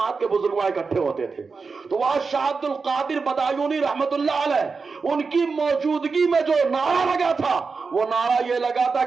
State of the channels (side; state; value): left; quieter; 4.7 dB